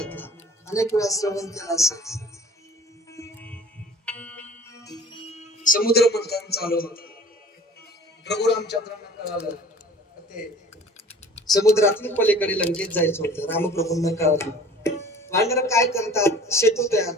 अनेक वेळा श्रवण केला असेल समुद्र मंथन चालू होत प्रभू रामचंद्रांना कळालं ते समुद्रातून पलीकडे लंकेत जायचं होतं रामप्रभूंना कळालं वानर काय करतात सेतू तयार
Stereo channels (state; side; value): normal; both; correlation 0.46